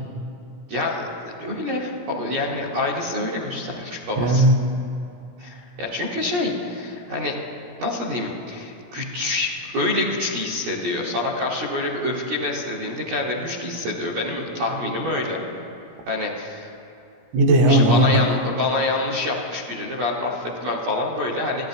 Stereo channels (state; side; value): late; left; 17 ms